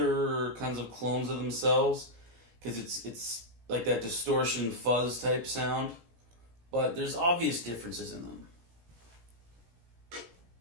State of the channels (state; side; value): late; left; 17 ms